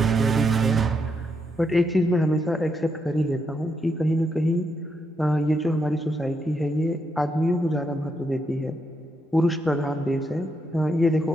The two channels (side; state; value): both; normal; correlation 0.80